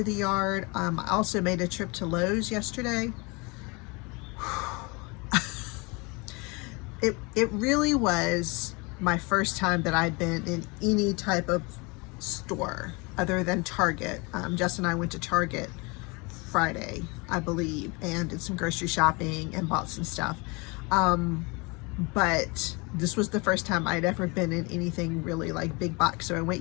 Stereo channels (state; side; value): quieter; right; 28.3 dB